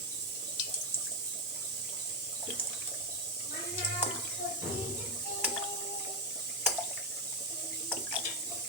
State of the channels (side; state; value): both; normal; correlation 0.08